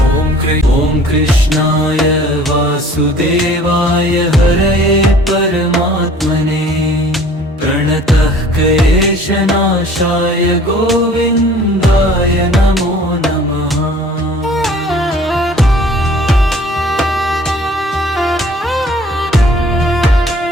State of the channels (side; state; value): both; normal; correlation 0.51